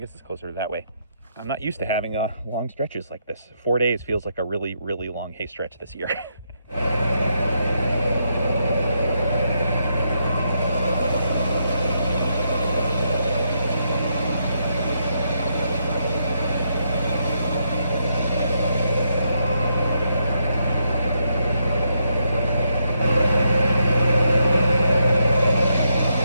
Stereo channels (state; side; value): inverted; both; correlation -0.79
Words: it's closer to that way. I'm not used to having long stretches like this. 4 days feels like a really, really long hay stretch this year.